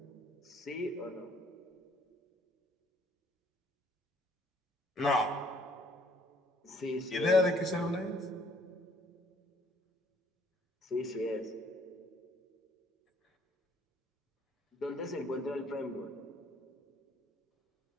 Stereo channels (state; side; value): normal; both; correlation 0.63